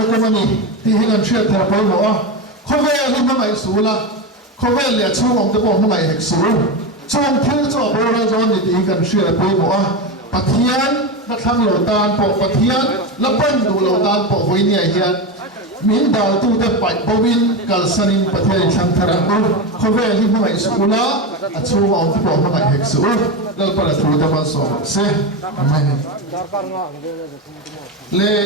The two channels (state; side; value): normal; both; correlation 0.17